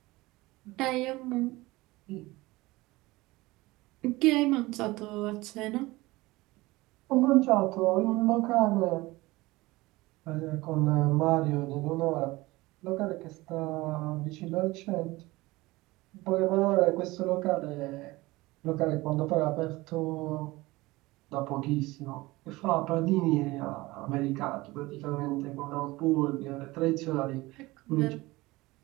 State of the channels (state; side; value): quieter; left; 20.5 dB